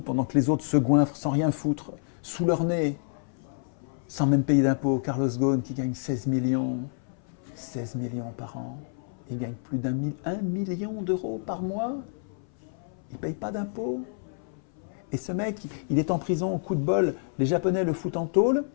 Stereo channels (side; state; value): right; silent; 58 dB below the other